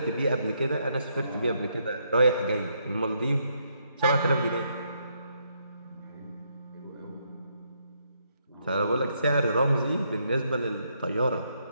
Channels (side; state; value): both; inverted; correlation -0.75